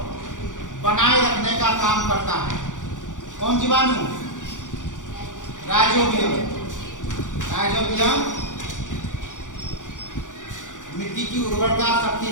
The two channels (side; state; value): right; late; 0.87 ms